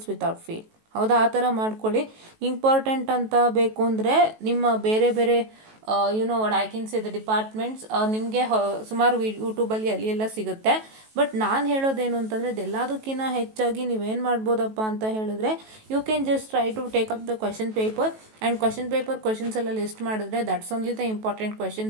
without fail. ಹೌದಾ, ಆ ಥರ ಮಾಡ್ಕೊಳ್ಳಿ. ಇಂಪಾರ್ಟೆಂಟ್ ಅಂತ ಬೇಕು ಅಂದರೆ ನಿಮ್ಮ ಬೇರೆ ಬೇರೆ what I can say the departments ನಿಮಗೆ ಸುಮಾರು ಯೂಟ್ಯೂಬಲ್ಲಿ ಅಲ್ಲಿ ಎಲ್ಲ ಸಿಗುತ್ತೆ. ಬಟ್ ನಾನು ಹೇಳೋದೇನು ಅಂತಂದರೆ, ಇದೆಲ್ಲದಕ್ಕಿಂತ ಹೆಚ್ಚಾಗಿ ನೀವೇನು ಮಾಡ್ಬೋದಪ್ಪ ಅಂತ ಹೇಳಿದ್ರೆ, you can just try to take up the question paper and question paper questions ಎಲ್ಲ ಲಿಸ್ಟ್ ಮಾಡಿದ್ರೆ that's only the important question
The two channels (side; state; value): left; late; 18 ms